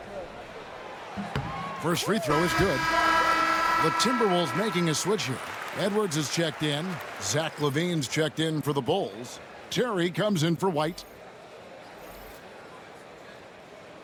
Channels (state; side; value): identical; both; correlation 1.00